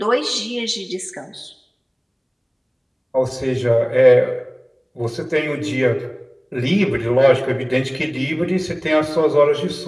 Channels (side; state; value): both; identical; correlation 1.00